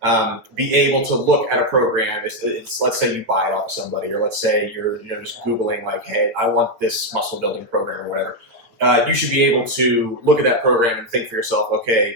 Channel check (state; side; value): late; left; 9.1 ms